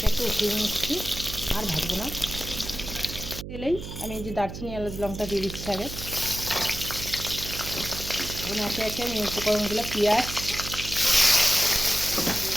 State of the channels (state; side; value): noise; right; hum, 9 dB below the sound